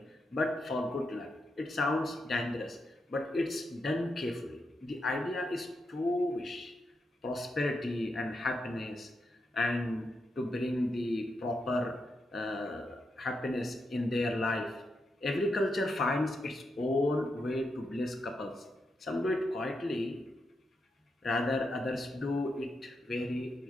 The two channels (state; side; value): normal; both; correlation 0.84